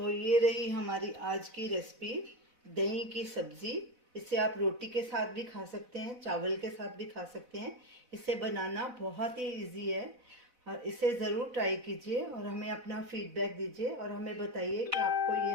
ये रही हमारी आज की रेसिपी, दही की सब्जी। इसे आप रोटी के साथ भी खा सकते हैं, चावल के साथ भी खा सकते हैं। इसे बनाना बहुत ही इजी है। और इसे ज़रूर ट्राई कीजिए और हमें अपना फीडबैक दीजिए और हमें बताइए कि आपको ये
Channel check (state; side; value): late; left; 4.0 ms